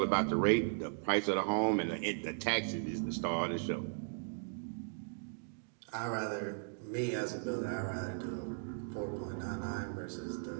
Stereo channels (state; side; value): silent; left; digital silence